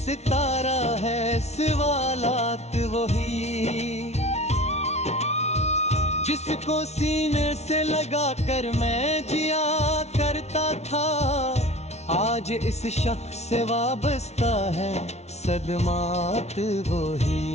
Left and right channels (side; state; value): right; late; 0.32 ms